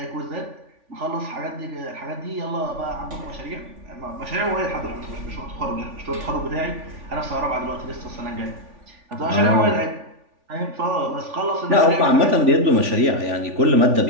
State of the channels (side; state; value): left; late; 3.5 ms